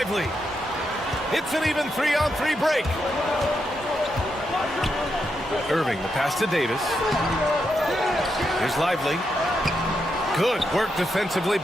It's an even 3-on-3 break. Irving, the pass to Davis. Here's Lively. Good work defensively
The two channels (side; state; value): both; normal; correlation 0.83